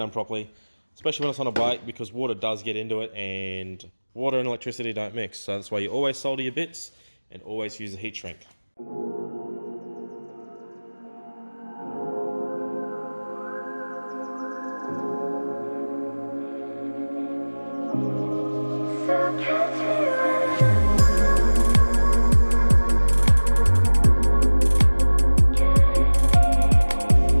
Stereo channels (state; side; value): inverted; both; correlation -1.00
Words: properly, especially when it's on a bike, because water does get into it, and water and electricity don't mix. So that's why you always solder your bits and always use a heat shrink.